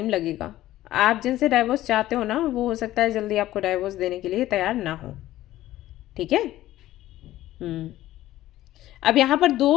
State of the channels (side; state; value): right; quieter; 14.8 dB